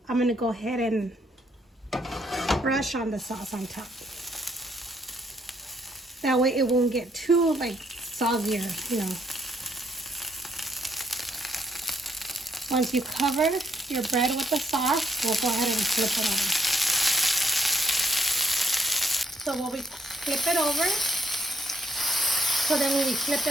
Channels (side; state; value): both; normal; correlation 0.71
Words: I'm going to go ahead and brush on the sauce on top. That way it won't get too like soggier, you know. Once you cover your bread with the sauce, we'll go ahead and flip it over. So when we flip it over, so then when we flip